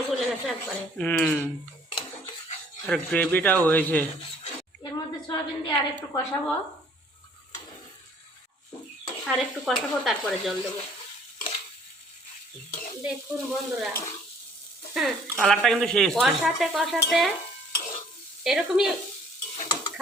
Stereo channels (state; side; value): normal; both; correlation 0.57